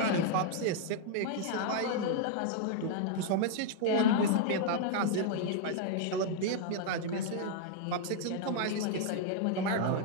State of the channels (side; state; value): both; different; correlation 0.00